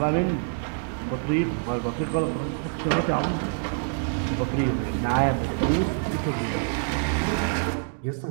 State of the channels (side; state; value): left; silent; digital silence